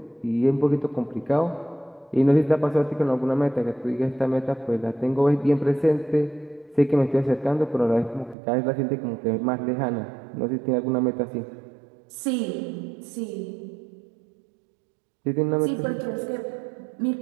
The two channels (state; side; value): drops out; left; at 8.3 s